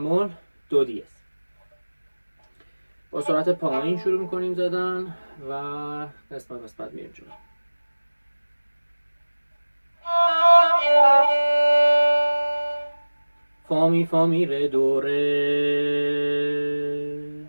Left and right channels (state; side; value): inverted; both; correlation -1.00